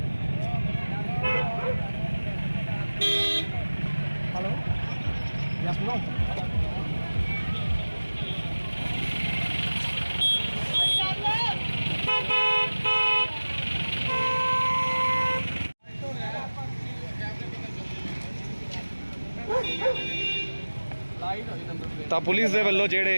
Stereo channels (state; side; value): inverted; both; correlation -1.00